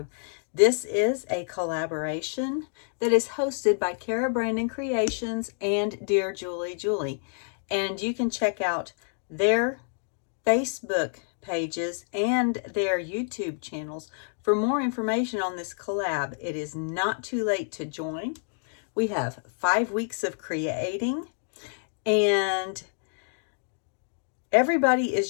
This is a collaboration that is hosted by Cara Brandon Creations and DearJulieJulie. And you can check out their Facebook pages and their YouTube channels for more information on this collab. It is not too late to join. We have 5 weeks of creating, and everybody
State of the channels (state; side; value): silent; right; digital silence